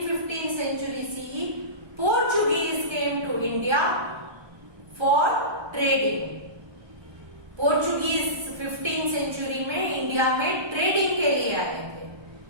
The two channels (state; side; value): late; left; 1.2 ms